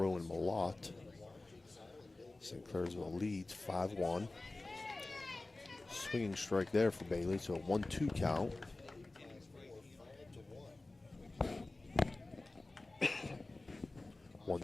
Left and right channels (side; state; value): right; quieter; 3.0 dB